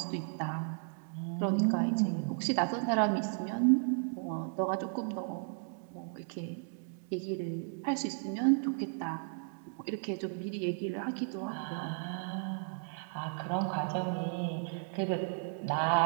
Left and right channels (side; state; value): left; silent; 55 dB below the other